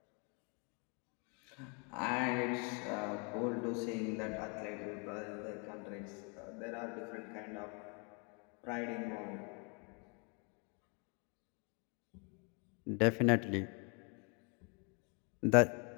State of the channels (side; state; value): right; quieter; 35.3 dB